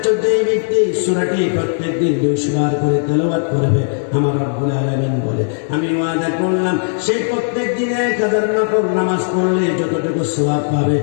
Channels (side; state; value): right; silent; digital silence